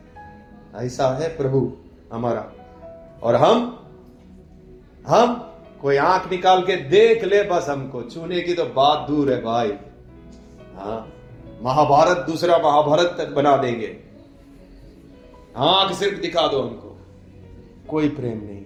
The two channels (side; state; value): both; identical; correlation 1.00